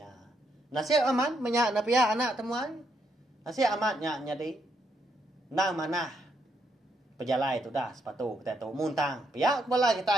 Nasib aman menya na pia anak temuan. Nasib amatnya jadi. Nang mana pejalai tu dah sepatu kita tu muntang. Pia kepala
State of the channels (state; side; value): normal; both; correlation 0.77